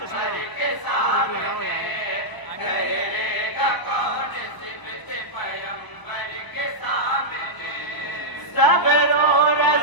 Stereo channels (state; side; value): late; right; 1.0 ms